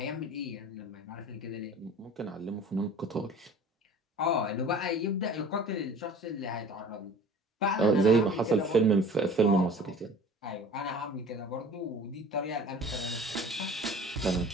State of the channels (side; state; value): both; normal; correlation 0.45